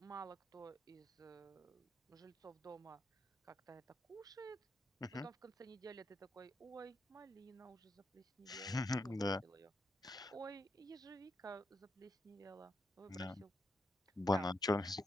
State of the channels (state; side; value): normal; both; correlation 0.82